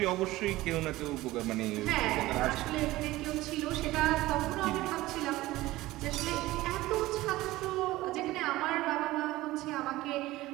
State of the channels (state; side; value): quieter; left; 17.8 dB